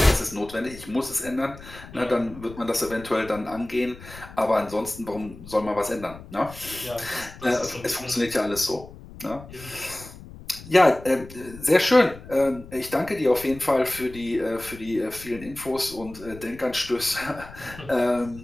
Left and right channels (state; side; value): noise; left; rumble, 17 dB below the sound